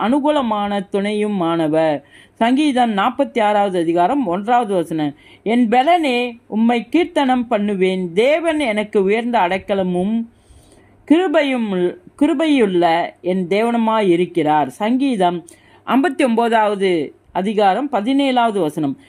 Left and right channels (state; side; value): identical; both; correlation 1.00